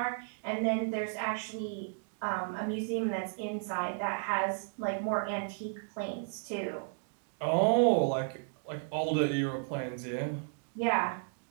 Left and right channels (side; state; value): left; silent; digital silence